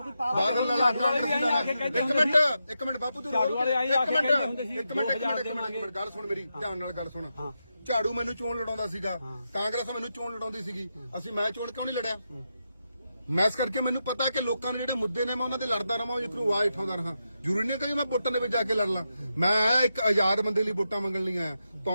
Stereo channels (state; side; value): inverted; both; correlation -0.86